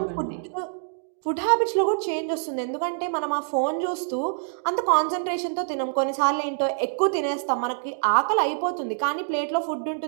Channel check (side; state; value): left; silent; digital silence